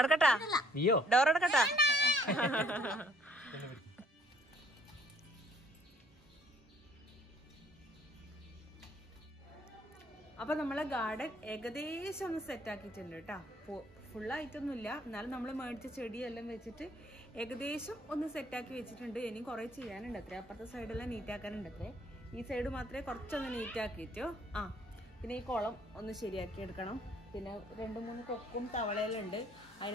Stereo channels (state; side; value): normal; both; correlation 0.60